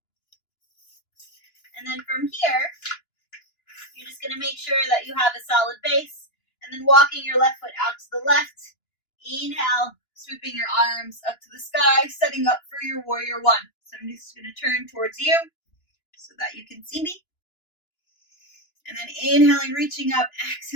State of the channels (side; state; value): right; late; 2.9 ms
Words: And then from here, you're just going to make sure that you have a solid base, and then walking your left foot out to the left. Inhale, sweeping your arms up to the sky, setting up for your warrior one. So I'm just going to turn towards you so that you can see me. And then inhaling, reaching up,